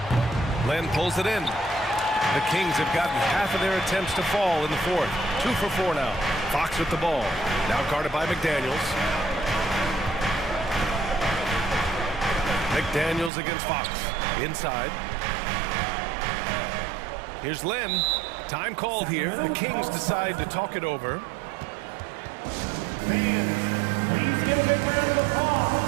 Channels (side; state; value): left; drops out; at 13.3 s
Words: Len pulls it in. The Kings have gotten half of their attempts to fall in the 4th. 2 for 4 now. Fox with the ball. Now guarded by McDaniels. McDaniels against Fox. Inside. Here's Len. Time called here. The Kings decide to talk it over. Fans, please give a big round of applause